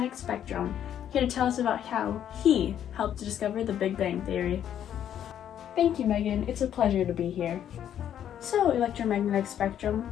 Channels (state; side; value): quieter; right; 10.1 dB